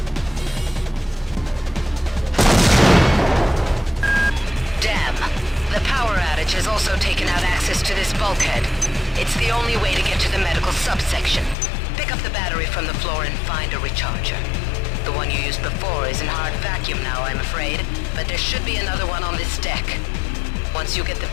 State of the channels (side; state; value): right; drops out; at 11.6 s